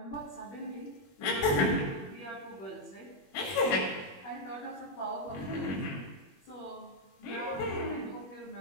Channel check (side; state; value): right; late; 21 ms